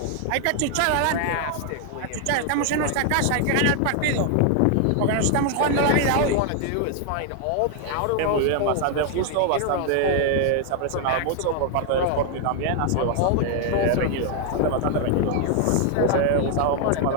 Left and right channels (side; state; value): both; different; correlation 0.00